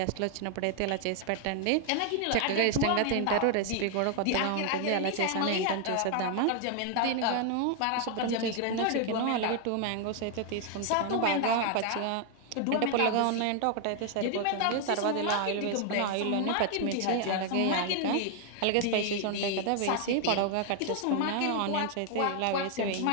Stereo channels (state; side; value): different; both; correlation 0.00